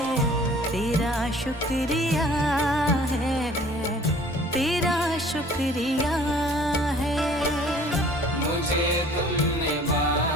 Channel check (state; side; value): normal; both; correlation 0.52